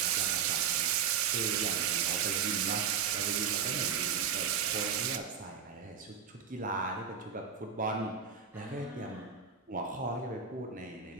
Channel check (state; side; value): quieter; left; 7.3 dB